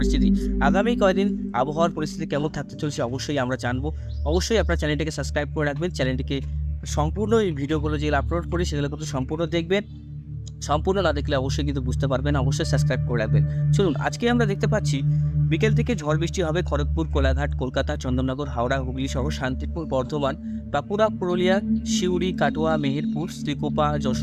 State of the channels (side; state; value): both; identical; correlation 1.00